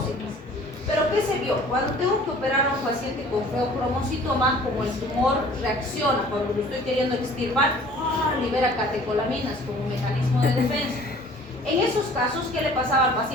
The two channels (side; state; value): both; normal; correlation 0.50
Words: Pero ¿qué se vio? Cuando tengo que operar a un paciente con feocromocitoma, como el tumor reacciona, cuando lo estoy queriendo extirpar, libera catecolaminas como un mecanismo de defensa. En esos casos, ¿qué le pasaba al